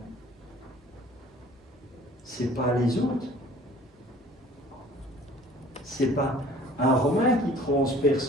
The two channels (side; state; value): both; normal; correlation 0.51